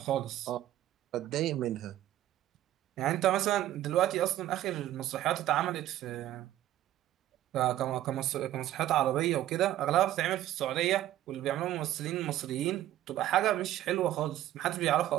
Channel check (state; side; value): quieter; left; 13.3 dB